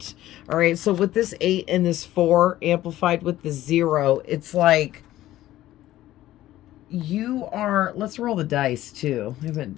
All right, so with this 8 and this 4 amplified with the 0, it's like you are, let's roll the dice too. I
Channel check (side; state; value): right; quieter; 14.6 dB